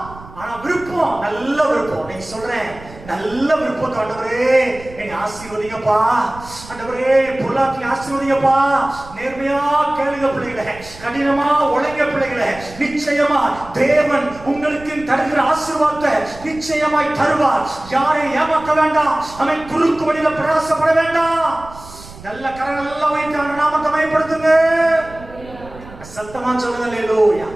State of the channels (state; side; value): noise; right; rumble, 18 dB below the sound